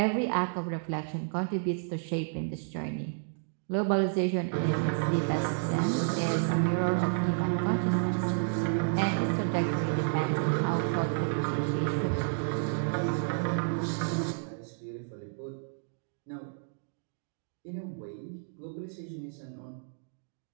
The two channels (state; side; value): silent; left; digital silence